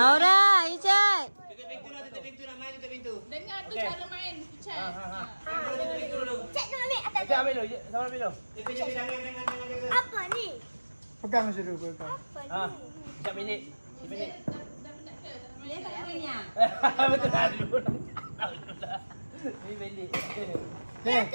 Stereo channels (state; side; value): inverted; both; correlation -1.00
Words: Isyad. Tutup pintu nak main tutup pintu. Dengar tu cara main. Isyad. Cek tu ambil atas. Okey, ambil dulu. Sama ambil dulu. Apa ni? Pegang macam tu. Sekejap minit. Dia tak nak main yang. Betul dah dulu. Ni belik. Okey.